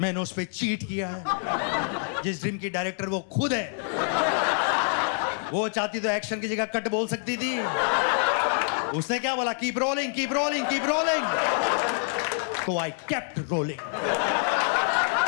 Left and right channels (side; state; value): right; silent; digital silence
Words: मैंने उस पर चीट किया है। जिस ड्रीम की डायरेक्टर वो खुद है। वो चाहती तो एक्शन की जगह कट बोल सकती थी। उसने क्या बोला? Keep rolling, keep rolling, keep rolling. तो आई केप्ट रोलिंग।